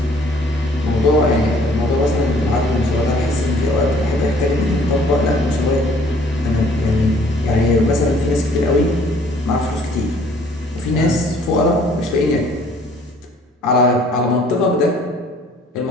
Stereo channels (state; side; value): normal; both; correlation 0.58